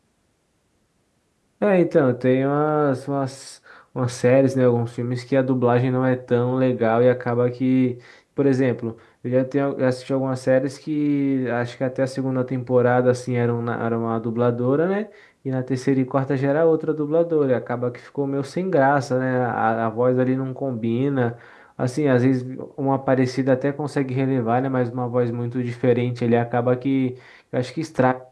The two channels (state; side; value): identical; both; correlation 1.00